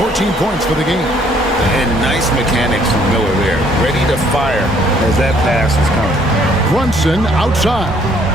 points for the game. And nice mechanics from Miller there. Ready to fire as that pass is coming. Brunson outside.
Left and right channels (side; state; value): both; normal; correlation 0.63